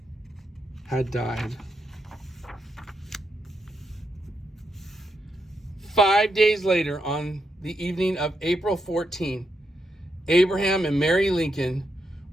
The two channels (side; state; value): both; normal; correlation 0.82